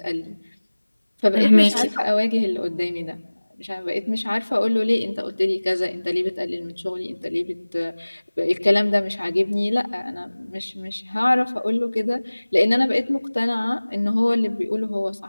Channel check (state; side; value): inverted; both; correlation -1.00